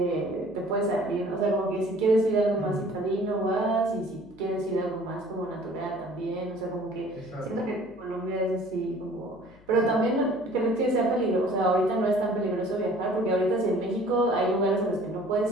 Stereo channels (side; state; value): left; noise; hum, 27 dB below the sound